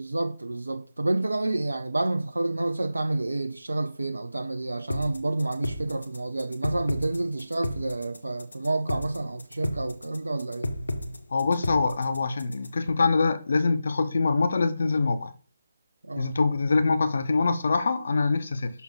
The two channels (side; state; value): both; inverted; correlation -0.92